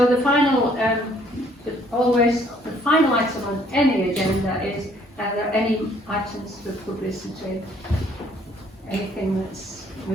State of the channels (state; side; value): normal; both; correlation 0.62